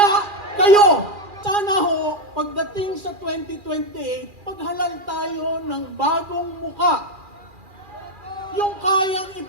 kayo! Sana ho, pagdating sa 2028, paghalal tayo ng bagong muka. Yung kayang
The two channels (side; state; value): left; late; 2.4 ms